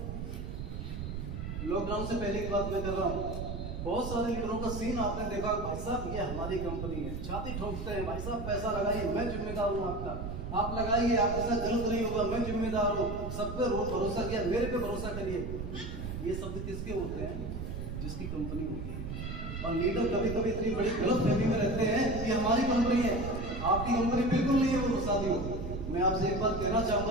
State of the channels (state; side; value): noise; right; rumble, 6 dB below the sound